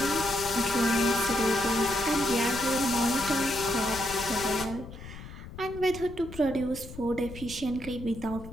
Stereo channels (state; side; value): noise; left; rumble, 13 dB below the sound